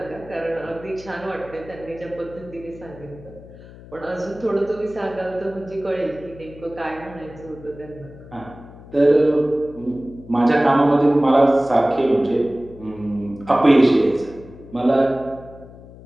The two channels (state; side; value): noise; left; hum, 19 dB below the sound